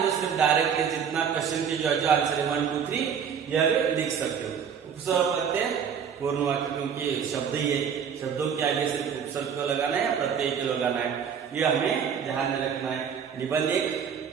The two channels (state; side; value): quieter; left; 7.4 dB